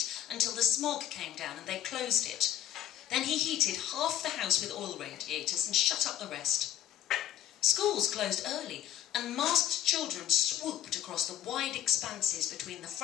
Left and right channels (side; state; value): right; quieter; 11.7 dB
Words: until the smog came down and they closed it. Then he heated half the house with oil radiators and shut up the rest. Schools closed early and masked children swooped across the wide expanses between the